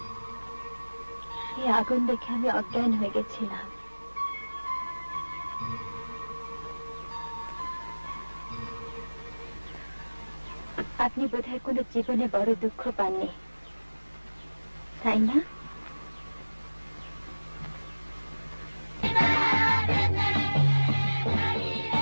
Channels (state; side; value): inverted; both; correlation -1.00